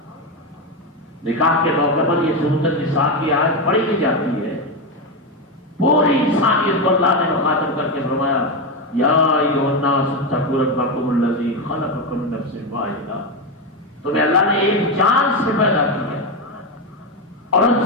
نکاح کے موقع پر یہ سورۃ النساء کی آیت پڑھی بھی جاتی ہے۔ پوری انسانیت کو اللہ نے مخاطب کر کے فرمایا یا ایھا الناس اتقوا ربکم الذی خلقکم من نفس واحدہ، تمہیں اللہ نے ایک جان سے پیدا کیا اور ان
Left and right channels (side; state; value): both; normal; correlation 0.11